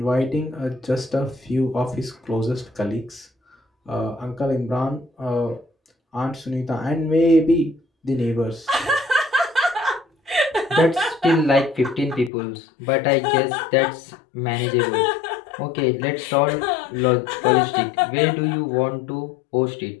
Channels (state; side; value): drops out; right; at 12.3 s